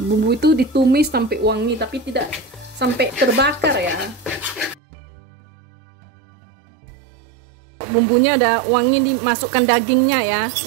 Bumbu itu ditumis sampai wangi, tapi tidak sampai terbakar ya. Bumbunya udah wangi, dimasukkan dagingnya ya,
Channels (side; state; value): left; drops out; at 4.8 s